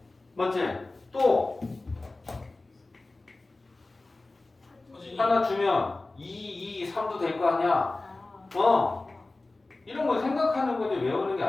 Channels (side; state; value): right; quieter; 3.2 dB